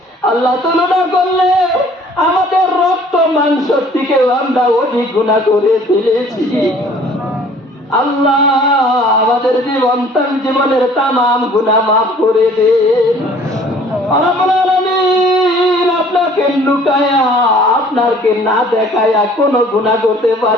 আল্লাহ তুলনা করলে আমাদের রক্ত মাংস থেকেও আমরা অধিক গুনাহ করে ফেলেছি। আল্লাহ আমাদের জীবনের তামাম গুনাহ মাফ করে দেন। রব্বুল আলামিন আপনাকে লুকায়া আপনাকে না দেখায়া কোনো গুনাহ করতে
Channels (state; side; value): normal; both; correlation 0.54